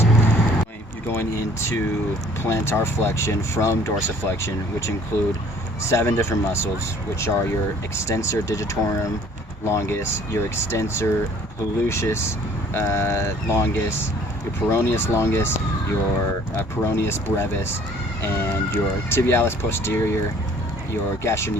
You're going into plantar flexion from dorsiflexion, which include 7 different muscles, which are your extensor digitorum longus, your extensor hallucis longus, your peroneus longus, your peroneus brevis, and your tibialis posterior, your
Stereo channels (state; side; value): normal; both; correlation 0.55